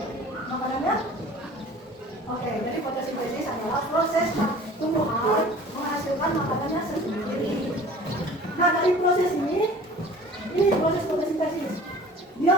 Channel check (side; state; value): both; normal; correlation 0.45